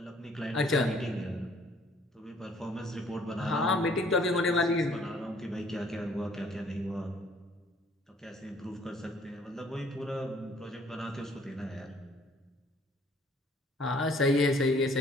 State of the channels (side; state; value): both; normal; correlation 0.60